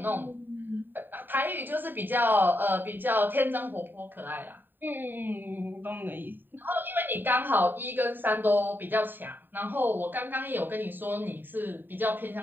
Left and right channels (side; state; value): left; late; 0.093 ms